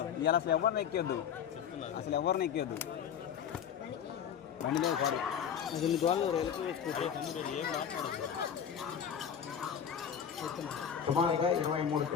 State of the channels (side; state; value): right; quieter; 8.2 dB